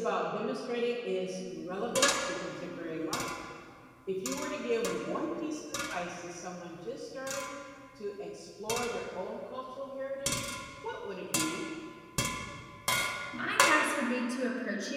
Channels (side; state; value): both; identical; correlation 1.00